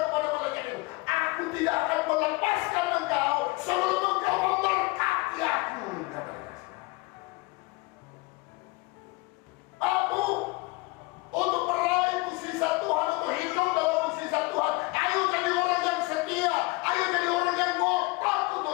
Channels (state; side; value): quieter; right; 23.8 dB